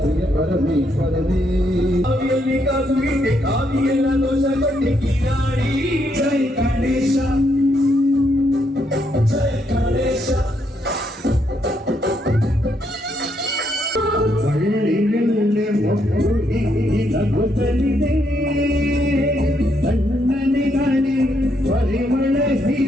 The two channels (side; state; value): both; normal; correlation 0.76